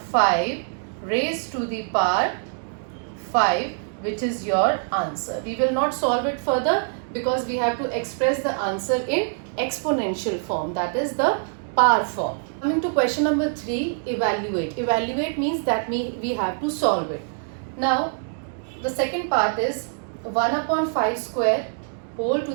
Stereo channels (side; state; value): left; silent; digital silence